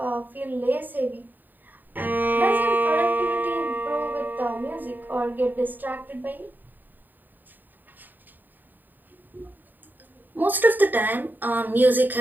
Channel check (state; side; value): late; left; 0.089 ms